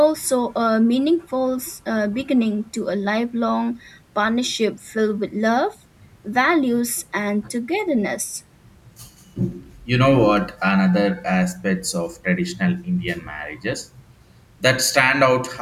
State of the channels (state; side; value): identical; both; correlation 1.00